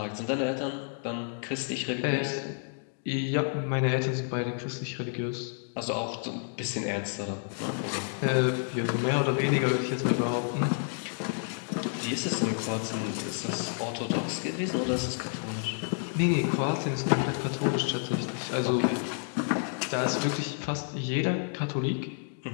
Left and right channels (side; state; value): right; silent; 58 dB below the other